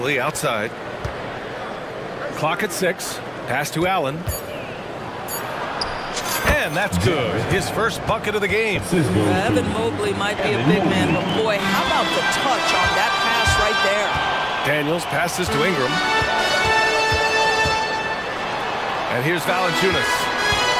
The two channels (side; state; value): both; identical; correlation 1.00